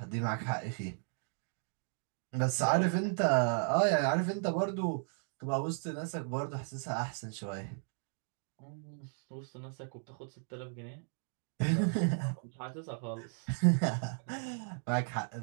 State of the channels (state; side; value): silent; left; 54 dB below the other